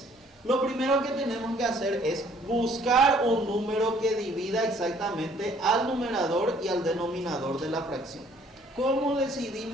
Lo primero que tenemos que hacer es buscar un número que divida exactamente al numerador y al denominador de la fracción. ¿Cómo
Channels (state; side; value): normal; both; correlation 0.60